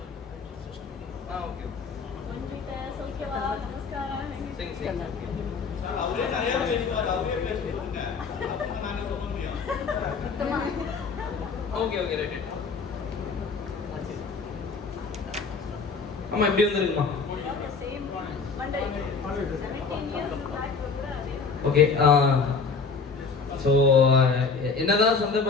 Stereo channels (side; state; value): right; quieter; 4.9 dB